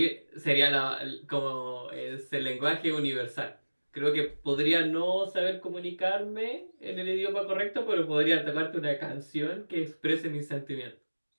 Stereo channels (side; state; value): both; inverted; correlation -1.00